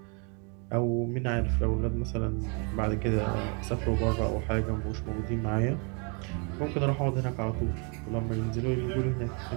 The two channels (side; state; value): left; quieter; 35.5 dB